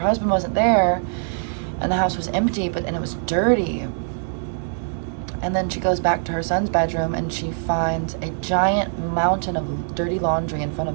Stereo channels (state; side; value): silent; left; 57 dB below the other